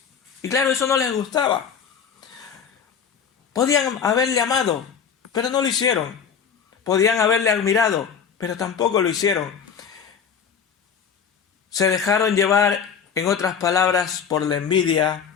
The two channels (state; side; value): quieter; right; 6.9 dB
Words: Y claro, eso no les gustaba. Podían haberle amado, pero no lo hicieron. Podían haberle admirado, pero tampoco lo hicieron. Se dejaron llevar, en otras palabras, por la envidia